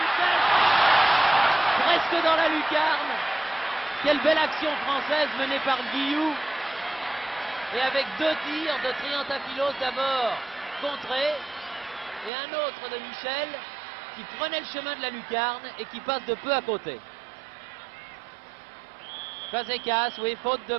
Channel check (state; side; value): drops out; left; at 12.3 s